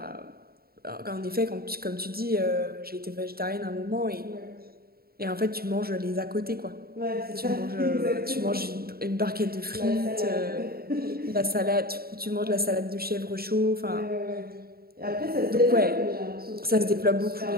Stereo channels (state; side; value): late; left; 0.44 ms